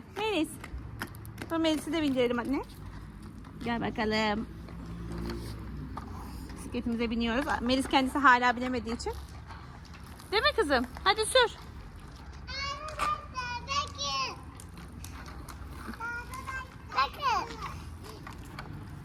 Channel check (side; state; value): both; identical; correlation 1.00